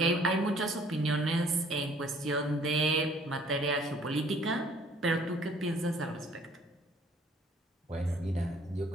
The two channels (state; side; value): normal; both; correlation 0.57